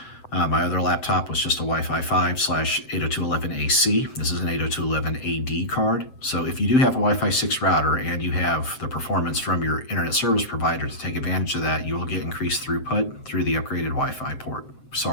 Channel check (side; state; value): right; late; 7.7 ms